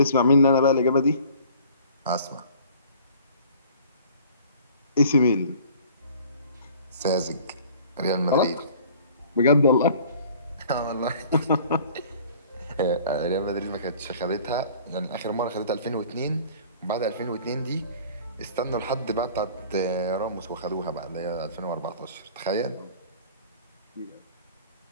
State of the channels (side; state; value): both; inverted; correlation -0.49